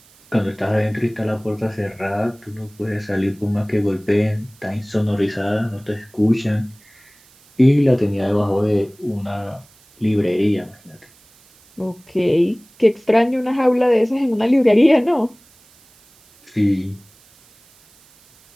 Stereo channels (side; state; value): right; noise; hiss, 29 dB below the sound